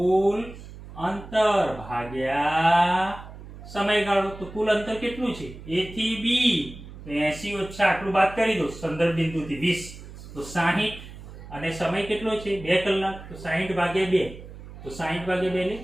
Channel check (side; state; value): right; noise; hum, 15 dB below the sound